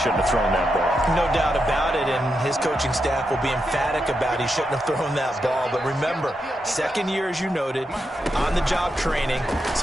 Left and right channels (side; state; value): both; normal; correlation 0.85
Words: have thrown that ball. No doubt about it, and his coaching staff will be emphatic about he shouldn't have thrown that ball. But remember, 2nd year, as you noted, on-the-job training,